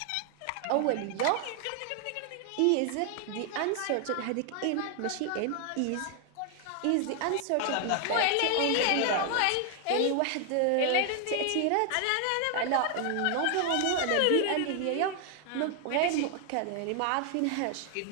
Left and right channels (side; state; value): both; different; correlation 0.00